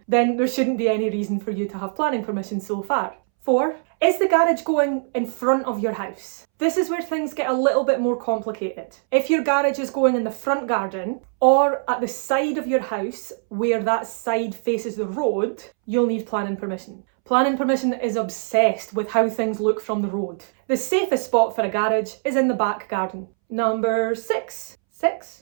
then there shouldn't be any reason for you to have planning permission so far. 4, is the garage going in front of your house? This is where things get a little bit more complicated. If your garage is going in the front garden or at the side of your house where that side faces the road, you'll need planning permission. Planning permission is obsessed with how things look from the road. The safest spot for a garage is in the back garden. Number 6.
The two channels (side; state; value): left; silent; 64 dB below the other